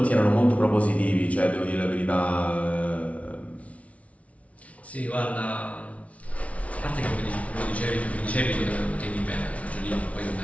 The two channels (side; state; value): right; late; 0.065 ms